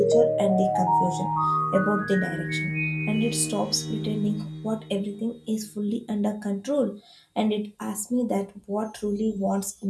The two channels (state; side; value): identical; both; correlation 1.00